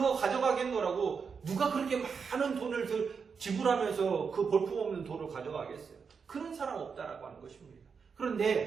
가져가겠노라고 누가 그렇게 많은 돈을 지불하면서 그 볼품없는 돈을 가져가겠어요? 그런 사람 없다라고 하는 것입니다.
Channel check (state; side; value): quieter; left; 5.8 dB